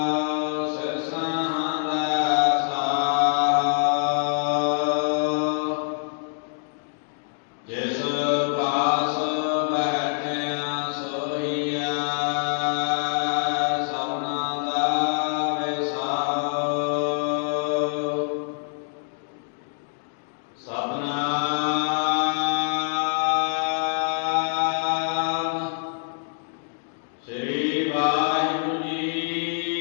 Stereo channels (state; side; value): silent; right; digital silence